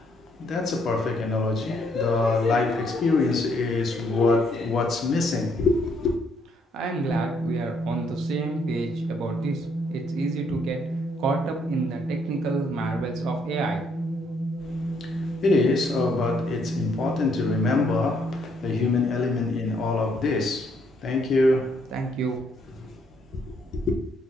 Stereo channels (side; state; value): both; normal; correlation 0.71